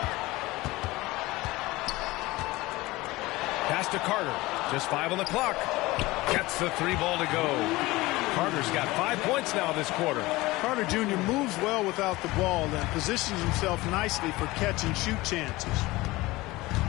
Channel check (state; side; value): quieter; right; 20.1 dB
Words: Pass to Carter. Just 5 on the clock. Gets the 3 ball to go. Carter's got 5 points now this quarter. Carter Jr. moves well without the ball and positions himself nicely for catch and shoot chances.